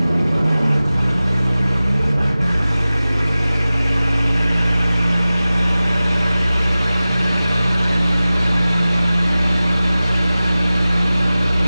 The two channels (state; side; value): inverted; both; correlation -0.96